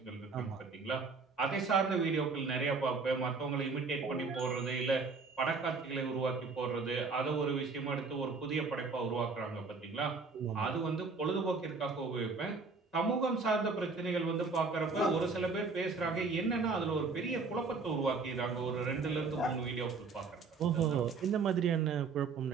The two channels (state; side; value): quieter; left; 4.4 dB